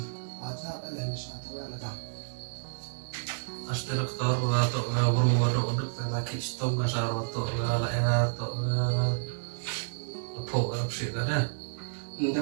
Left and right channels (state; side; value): silent; left; 58 dB below the other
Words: aja em besar tu yang letak. Asli dokter atau berumur untuk laki stop masalah atau ya atau apa sih kan? Dia